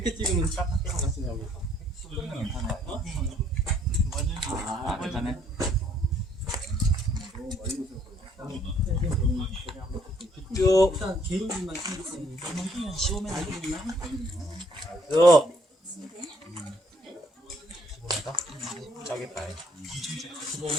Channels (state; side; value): normal; both; correlation 0.65